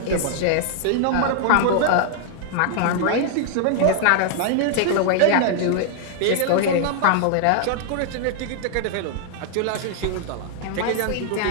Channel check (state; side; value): different; both; correlation -0.01